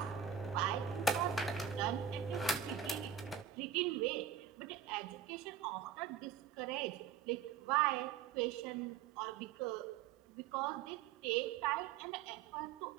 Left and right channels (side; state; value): left; quieter; 8.3 dB